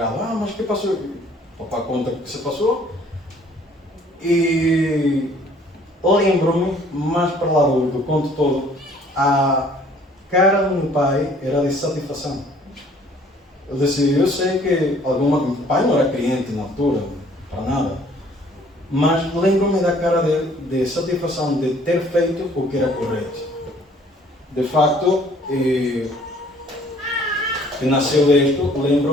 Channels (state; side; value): normal; both; correlation 0.58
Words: Ah, mas o que passou? O papai conta o que se passou. E lembro-me, mais para lá do conto todo, a cara do meu pai era de satisfação. Eu disse, eu sei que meu pai não era cliente na altura, para nada, mas lembro-me da cara dele de satisfação de ter feito o que era correto. De facto, que nasceu disto,